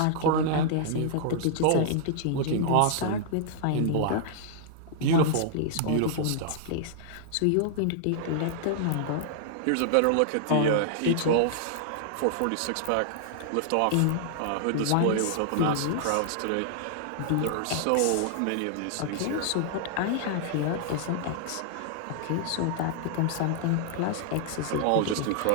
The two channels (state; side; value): different; both; correlation -0.01